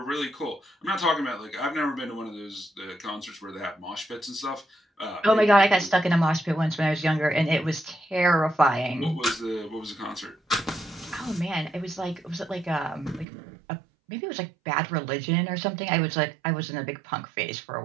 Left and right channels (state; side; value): drops out; left; at 13.2 s